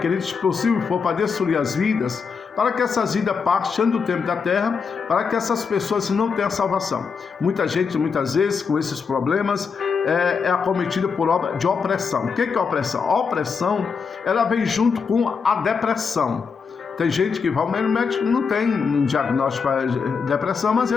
se possível for para destruir as vidas, para que essas vidas partam do tempo da terra, para que essas pessoas não tenham salvação. Muita gente, muitas vezes, com esses problemas, é acometida por obra de opressão. O que é opressão? A opressão, ela vem junto com a depressão. Tem gente que vai ao médico, não tem um diagnóstico para depressão, mas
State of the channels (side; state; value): right; quieter; 5.6 dB